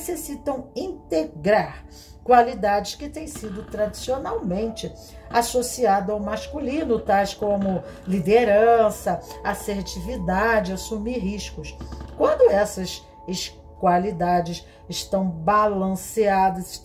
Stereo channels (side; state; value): both; identical; correlation 1.00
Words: integrar qualidades que têm sido tradicionalmente associadas ao masculino, tais como liderança, assertividade, assumir riscos. Quando essas qualidades estão balanceadas,